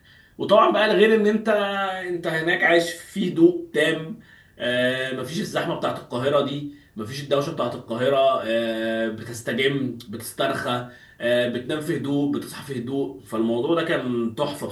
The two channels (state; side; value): identical; both; correlation 1.00